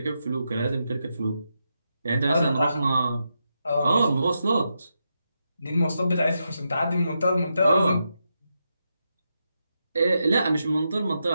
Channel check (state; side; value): inverted; both; correlation -0.85